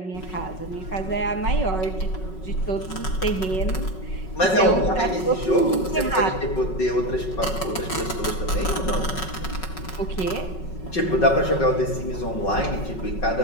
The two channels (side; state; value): right; late; 5.4 ms